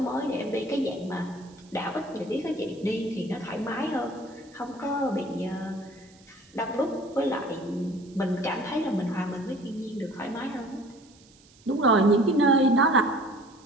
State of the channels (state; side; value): noise; right; hiss, 27 dB below the sound